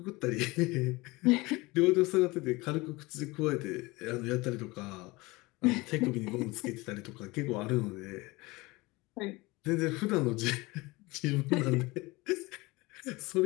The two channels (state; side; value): quieter; right; 22.7 dB